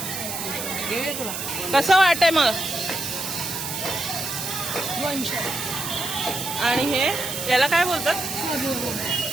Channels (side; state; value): right; noise; hiss, 5 dB below the sound